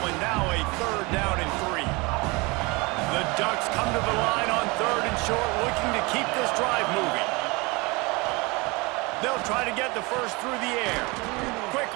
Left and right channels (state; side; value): quieter; left; 26.0 dB